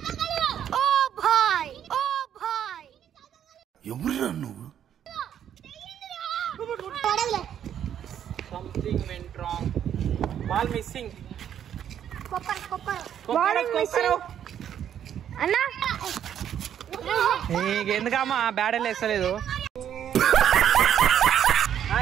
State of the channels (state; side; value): quieter; left; 9.6 dB